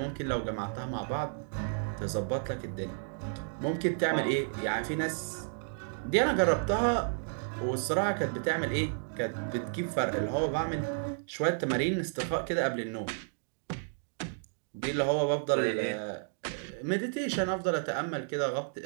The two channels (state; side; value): silent; left; digital silence